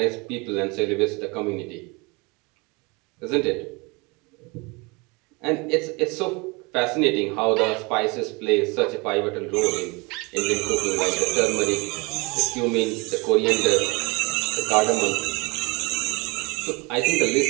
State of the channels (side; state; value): left; quieter; 27.4 dB